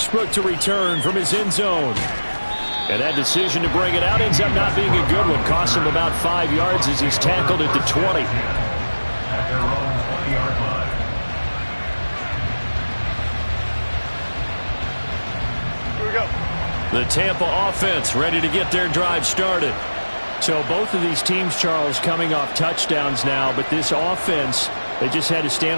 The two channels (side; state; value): both; inverted; correlation -1.00